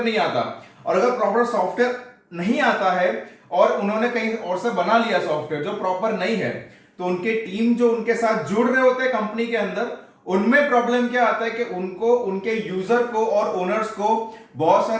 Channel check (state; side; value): identical; both; correlation 1.00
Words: नहीं आता। और अगर प्रॉपर सॉफ्टवेयर नहीं आता है और उन्होंने कहीं और से बना लिया सॉफ्टवेयर जो प्रॉपर नहीं है, तो उनके टीम जो उनके साथ जुड़ रहे होते हैं कंपनी के अंदर, उनमें प्रॉब्लम क्या आता है कि उनको उनके यूजर को और ओनर्स को बहुत